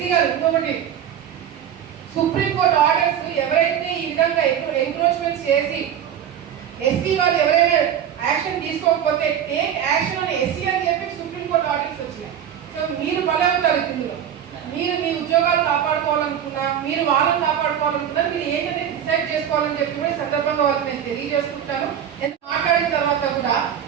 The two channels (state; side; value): quieter; left; 9.4 dB